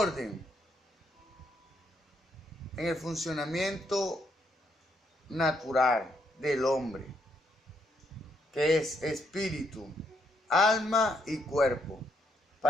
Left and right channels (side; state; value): both; normal; correlation 0.75